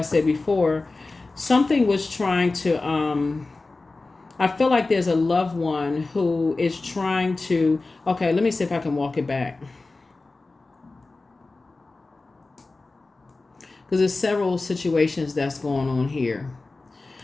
said before, something was trying to, I feel like there's a loved one who is trying to, okay, let me see if I can walk it back. Because there's several situations that's going on here.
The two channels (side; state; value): right; quieter; 3.4 dB